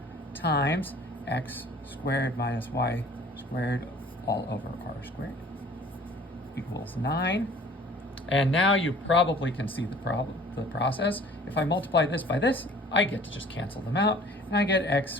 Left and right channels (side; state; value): both; normal; correlation 0.50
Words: times x squared minus y squared all over r squared equals 9. And now you probably can see the process. If I multiply this by this, I get to just cancel them out, and I get x